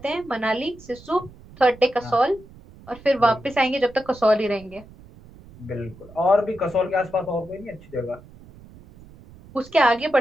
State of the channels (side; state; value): right; noise; rumble, 22 dB below the sound